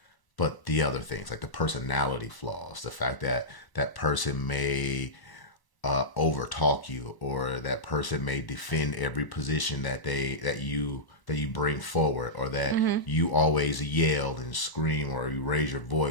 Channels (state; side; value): late; right; 1.0 ms